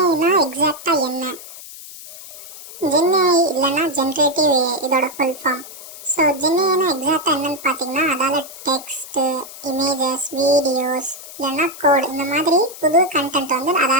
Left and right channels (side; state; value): left; noise; hiss, 15 dB below the sound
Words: எக்ஸாக்டாக என்ன? ஜென்யாய் இல்லைன்னா ஜென்ரேட்டிவ் ஏஐ இதோட ஃபுல் ஃபார்ம். ஸோ ஜென்யாய்னா எக்ஸாக்டாக என்னன்னு பார்த்தீங்கன்னா அதால் டெக்ஸ்ட்டு, இமேஜஸ், வீடியோஸ் இல்லைன்னா கோட் இந்த மாதிரி புது கண்டென்ட் வந்து